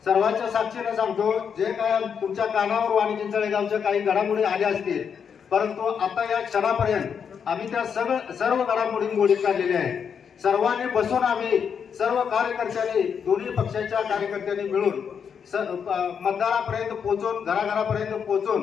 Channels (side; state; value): right; quieter; 7.1 dB